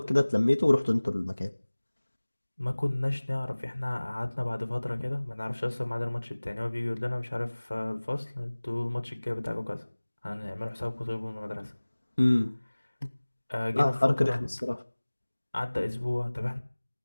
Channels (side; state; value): both; inverted; correlation -1.00